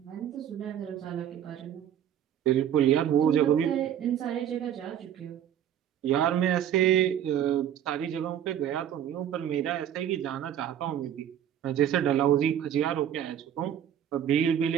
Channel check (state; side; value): quieter; left; 10.1 dB